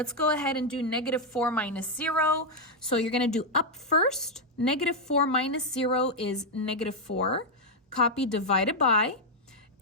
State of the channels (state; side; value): normal; both; correlation 0.00